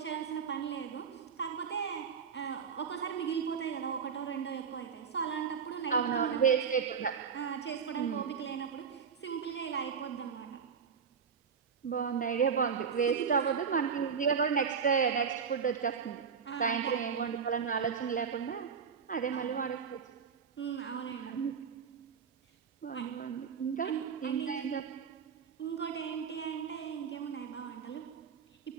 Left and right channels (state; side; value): quieter; left; 6.5 dB